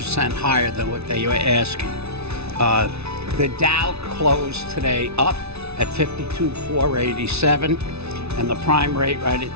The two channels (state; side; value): late; left; 0.80 ms